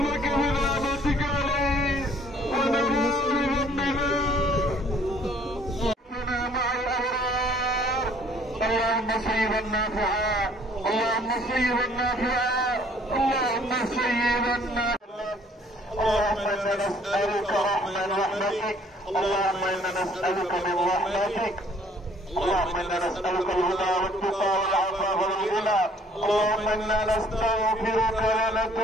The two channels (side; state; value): both; normal; correlation 0.59